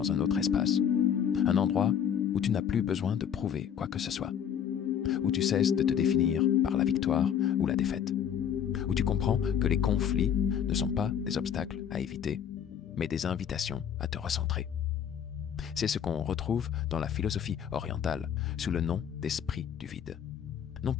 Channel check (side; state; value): right; quieter; 8.6 dB